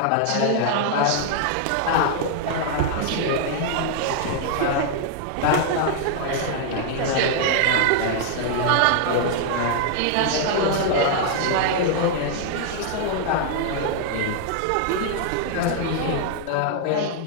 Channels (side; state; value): both; different; correlation -0.01